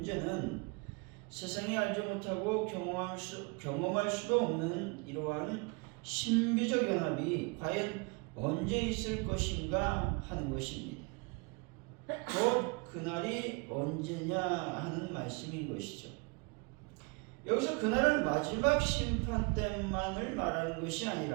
세상이 알지 못하고 경험할 수도 없는 이러한 신비적 연합이 과연 언제 있을 것인가 하는 것입니다. 곧 그날이 언제냐 하는 말씀인 것이죠. 여기서 그날은 마지막 심판 때만을 말하는 것이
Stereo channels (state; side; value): quieter; left; 30.0 dB